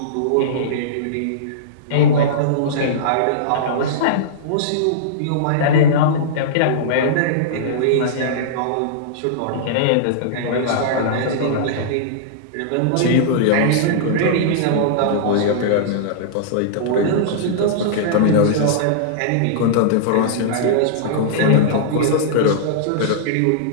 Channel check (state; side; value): different; both; correlation -0.03